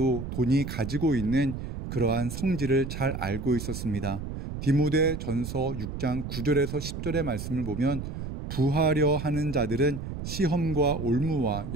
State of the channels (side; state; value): right; noise; rumble, 7 dB below the sound